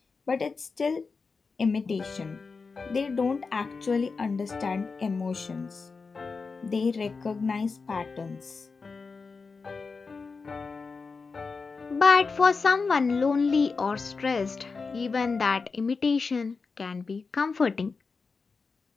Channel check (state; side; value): quieter; right; 4.6 dB